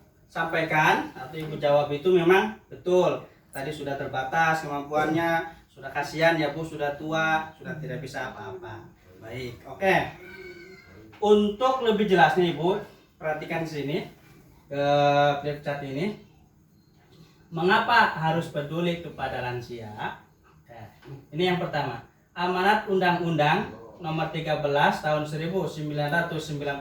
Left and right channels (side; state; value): both; identical; correlation 1.00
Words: sampaikan atau Ibu jawab itu memang betul. Tadi sudah terbatas kemampuannya, sudah kasihan ya Bu, sudah tua, sudah tidak bisa apa-apa. Baik, oke. Untuk lebih jelasnya Ibu, perhatikan di sini ke flip chart ini. Mengapa harus peduli kepada lansia? Ini yang pertama. Amanat Undang-Undang Nomor 13 Tahun 1998